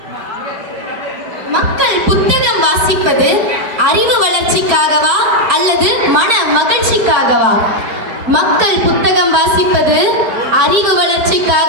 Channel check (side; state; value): left; late; 4.7 ms